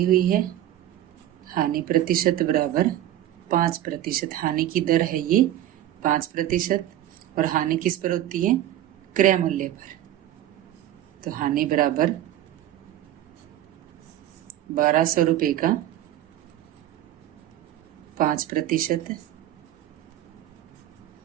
हुई है, हानि प्रतिशत बराबर 5%। हानि की दर है ये 5% और हानि किस पर होती है, क्रय मूल्य पर। तो हानि बराबर 1200 रुपये का 5%,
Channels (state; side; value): quieter; left; 12.7 dB